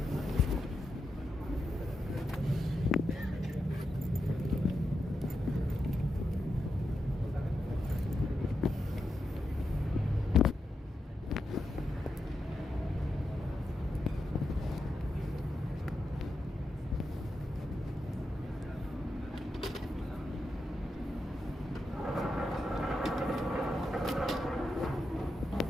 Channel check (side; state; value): both; normal; correlation 0.86